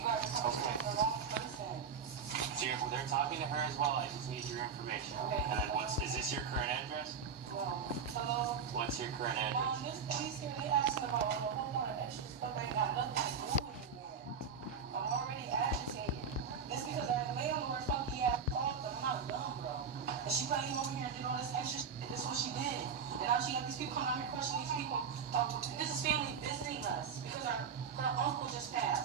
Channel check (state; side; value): quieter; left; 6.2 dB